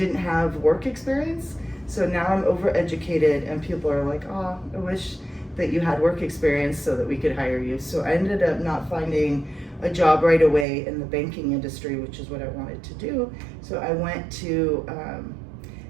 have work experience. So now I'm overeducated, and people are like, oh, I wish that you had work experience so that we could hire you. So I ended up not finding a job right away in the banking industry, which is what I wanted to do. So I went to,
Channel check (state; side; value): drops out; left; at 10.7 s